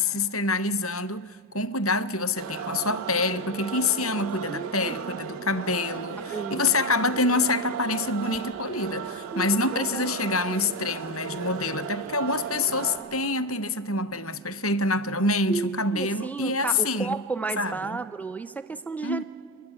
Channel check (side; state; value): both; normal; correlation 0.12